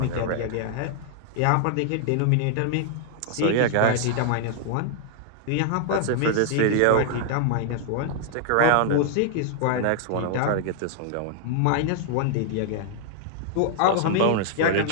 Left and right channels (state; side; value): different; both; correlation -0.01